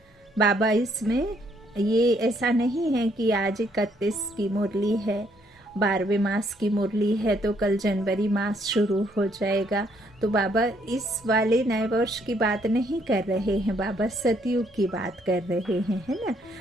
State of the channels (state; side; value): normal; both; correlation 0.69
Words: बाबा इसमें ये ऐसा नहीं है कि आज 31 की मुरली है, 12वें मास की मुरली है तो कल जनवरी मास शुरू हो जाएगा। तो बाबा इस वाले नए वर्ष की बात नहीं कर रहे हैं, बाबा सतयुग की बात कर रहे हैं, है ना।